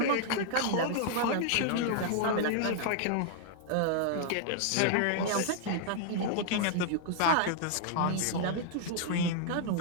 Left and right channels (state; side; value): different; both; correlation -0.01